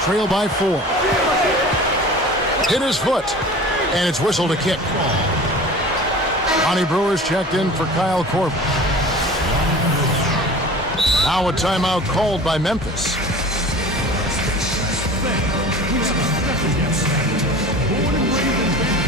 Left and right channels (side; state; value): both; normal; correlation 0.39